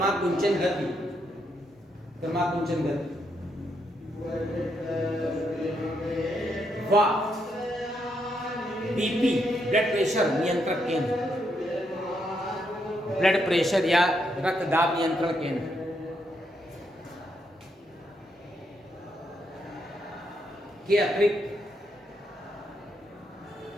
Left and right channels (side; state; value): both; normal; correlation 0.78